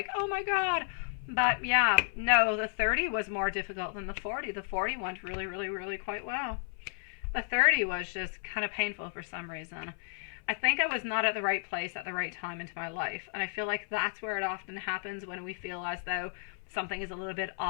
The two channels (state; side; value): silent; right; 56 dB below the other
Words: oh my God. But yeah, no, the 30 was more difficult than the 40. The 40 went really, really, really quite well. The 30 was just kind of painful for some reason. I think I was not at the right place at the right time into my life. And I feel like that's where it often happens, when we feel as though something is a little bit